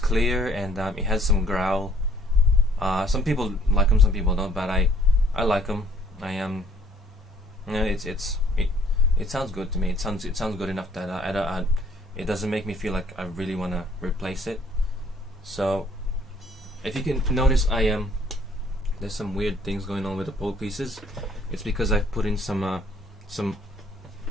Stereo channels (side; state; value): both; normal; correlation 0.61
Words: and it has some growl. Some people like them, some people don't, but I like them. It sounds good to me. It sounds good enough that it doesn't make me feel like I really want to replace it. So if you can notice, there's some weird things going on with the pole pieces. It's because I've put in some